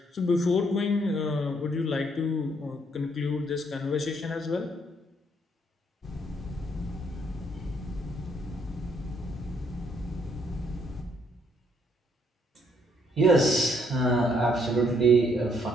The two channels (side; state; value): both; normal; correlation 0.69